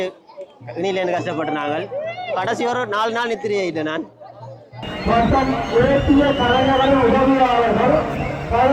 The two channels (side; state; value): both; identical; correlation 1.00